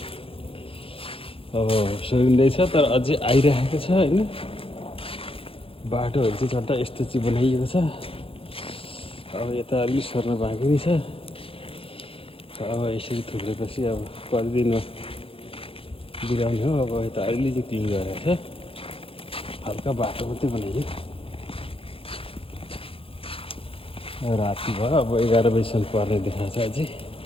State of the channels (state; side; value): late; right; 0.27 ms